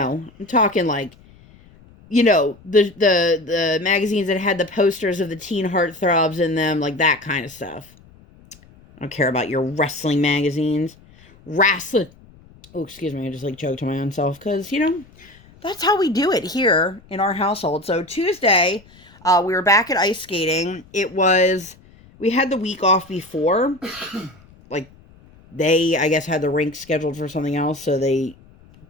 I'm talking like, the magazines that had the posters of the teen heartthrobs in them, like that kind of stuff. I don't care about your wrestling magazines. Wrestling. Oh, excuse me. I just like choked to my own self because, that's how we do it here in our household. So Tuesday, we were back at ice skating. We had the week off before. Like, they, I guess, had the rink scheduled for something else, so they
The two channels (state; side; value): noise; left; rumble, 26 dB below the sound